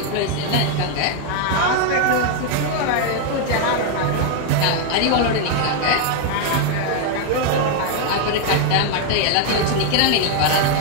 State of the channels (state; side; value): different; both; correlation 0.00